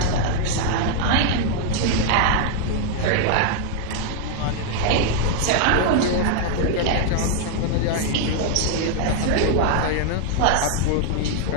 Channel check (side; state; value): both; different; correlation 0.00